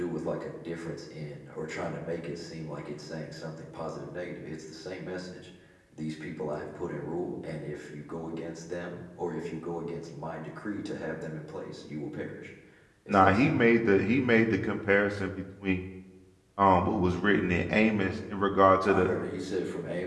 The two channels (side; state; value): both; identical; correlation 1.00